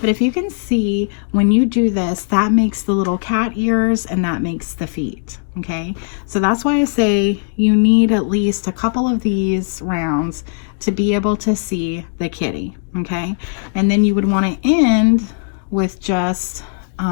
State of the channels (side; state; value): right; silent; digital silence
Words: if you can see, when you do this, that makes the little cat ears and that makes the feet, okay? So that's why I say you need at least a couple of these rounds to be able to see the kitty, okay? And then you would want to end with just